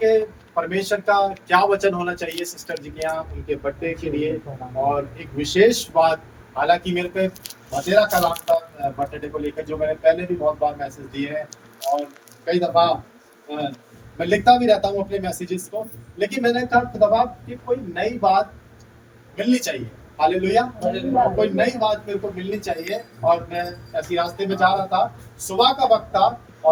परमेश्वर का क्या वचन होना चाहिए सिस्टर जी के यहाँ उनके बर्थडे के लिए, और एक विशेष बात, हालांकि मेरे पे बतेरा का नाम था बर्थडे को लेकर, जो मैंने पहले भी बहुत बार मैसेज दिए हैं और कई दफा मैं लिखता भी रहता हूँ अपने मैसेजेस को, लेकिन मैंने कहा दफा कि कोई नई बात मिलनी चाहिए। हालेलुया। और कोई नई बात मेरे को मिलनी चाहिए, और मैं ऐसी रास्ते में जा रहा था, सुबह का वक्त था,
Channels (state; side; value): identical; both; correlation 1.00